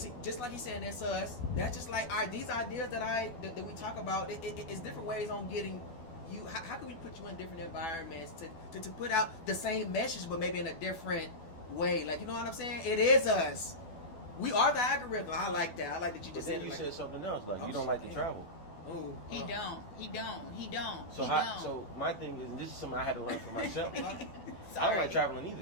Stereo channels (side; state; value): right; late; 12 ms